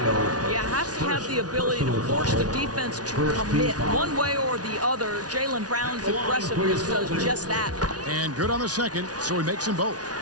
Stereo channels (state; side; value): late; left; 0.68 ms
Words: You have to have the ability to force the defense to commit one way or the other. Jaylen Brown's aggressiveness does just that. And good on the second, so he makes them both.